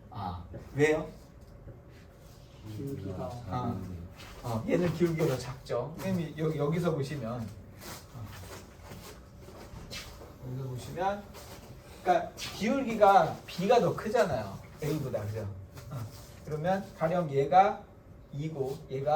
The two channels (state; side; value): identical; both; correlation 1.00